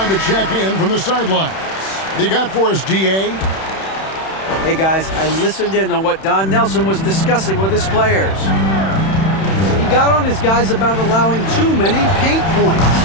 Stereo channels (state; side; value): late; right; 31 ms